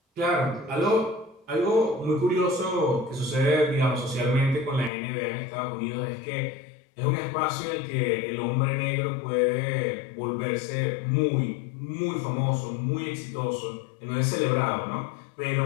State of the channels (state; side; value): drops out; right; at 4.9 s